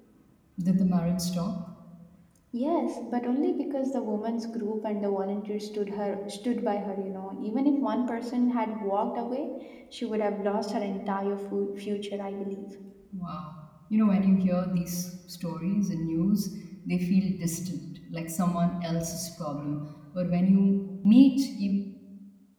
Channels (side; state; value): both; identical; correlation 1.00